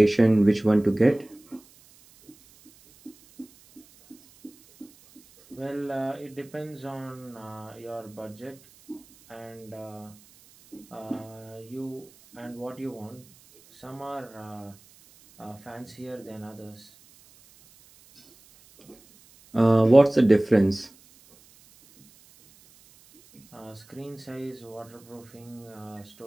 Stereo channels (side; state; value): right; noise; hiss, 27 dB below the sound